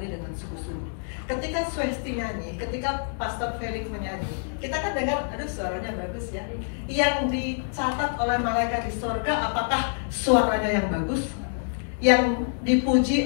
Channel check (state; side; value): silent; right; digital silence